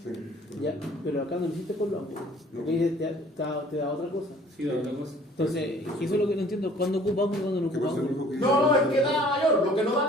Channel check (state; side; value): normal; both; correlation 0.53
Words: Ya, pero acá no lo hiciste con los ángulos. Porque ahí te da otra cosa. Sí, la otra cosa. Entonces, eso es lo que no entiendo. ¿Cuándo ocupa ángulo y cuándo no ¿Qué ocupa pasa? ángulo? No, es que da la mayor. Lo que no da